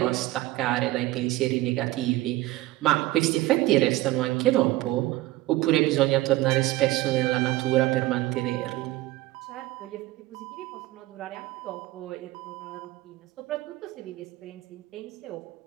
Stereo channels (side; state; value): left; quieter; 17.7 dB